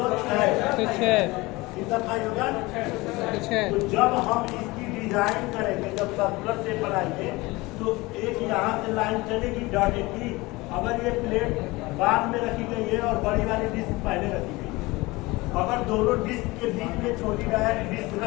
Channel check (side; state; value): right; quieter; 22.0 dB